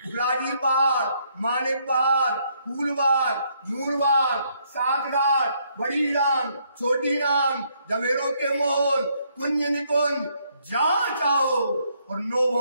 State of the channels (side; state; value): both; inverted; correlation -0.71